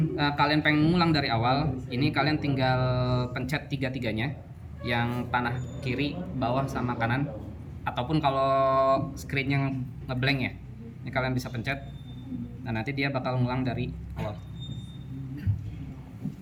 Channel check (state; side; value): identical; both; correlation 1.00